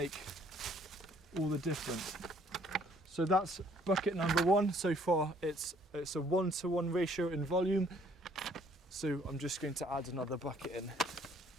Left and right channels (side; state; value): both; normal; correlation 0.61